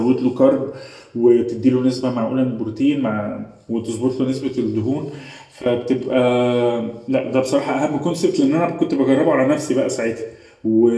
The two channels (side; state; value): both; identical; correlation 1.00